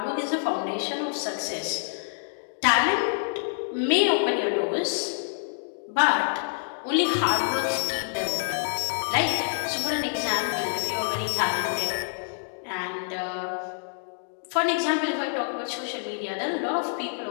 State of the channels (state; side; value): silent; right; digital silence